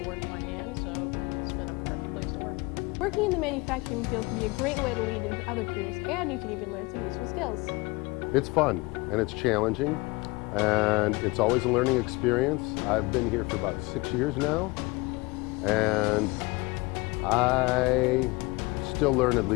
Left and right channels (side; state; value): right; quieter; 24.6 dB